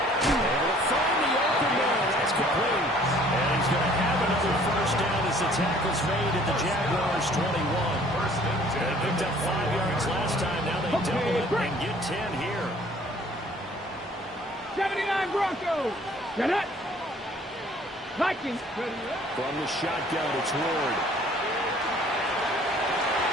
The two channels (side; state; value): both; normal; correlation 0.56